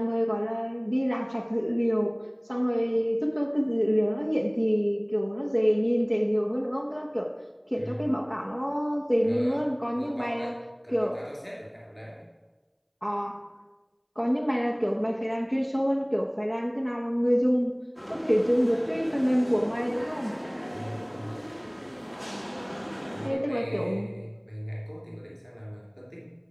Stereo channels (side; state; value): both; identical; correlation 1.00